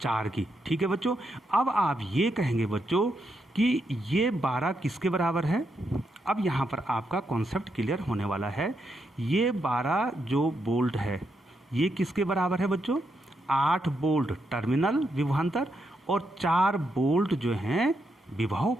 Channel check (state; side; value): normal; both; correlation 0.81